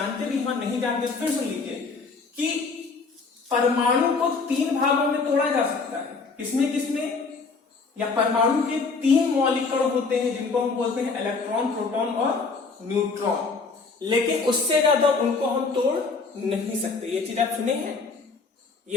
भी हैं, नहीं जानते फिर सुन लीजिए कि परमाणु को 3 भागों में तोड़ा जा सकता है। किसमें? या परमाणु के 3 मौलिक कण होते हैं जिनको हम बोलते हैं इलेक्ट्रॉन, प्रोटॉन और न्यूट्रॉन, लेकिन उससे ज्यादा उनको हम तोड़ नहीं सकते। ये चीज आप सुने हैं,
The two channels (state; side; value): quieter; right; 4.4 dB